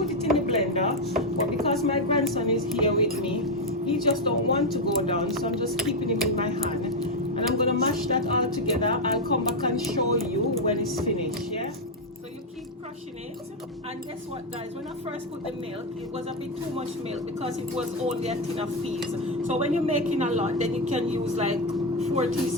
it in the blender, but because my grandson is here with me, he just don't want to go down, so I'm just keeping him in my hand, and I'm gonna mash that all together. I'll come back and show you when it's finished. Yeah, so you keep crushing it. And guess what, guys, when I first put the milk, it was a bit too much milk because it was only a tin of peas. So when you're making a lot, then you can use like 4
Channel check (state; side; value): normal; both; correlation 0.06